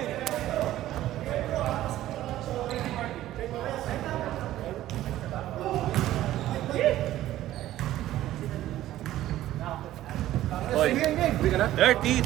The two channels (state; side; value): quieter; left; 14.1 dB